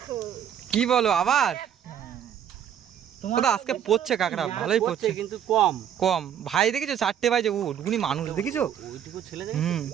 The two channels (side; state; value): left; quieter; 9.4 dB